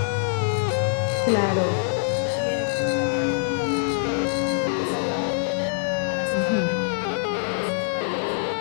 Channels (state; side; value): silent; right; digital silence